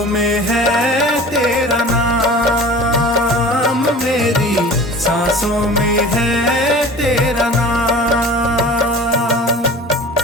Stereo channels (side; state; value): both; normal; correlation 0.40